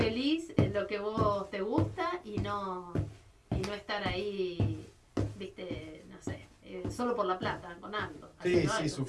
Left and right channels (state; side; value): identical; both; correlation 1.00